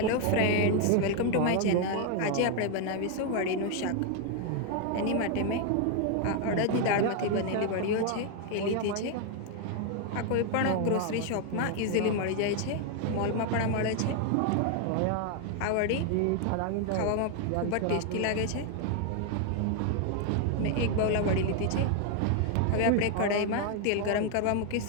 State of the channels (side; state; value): both; different; correlation 0.01